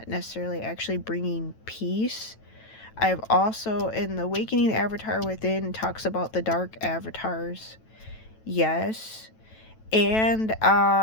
necessarily actually bringing peace. I've also, in the Awakening the Avatar Within, talks about the dark avatars. Yes. And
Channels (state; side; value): late; right; 9.1 ms